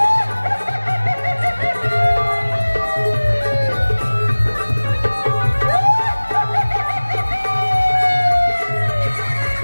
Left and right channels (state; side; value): inverted; both; correlation -1.00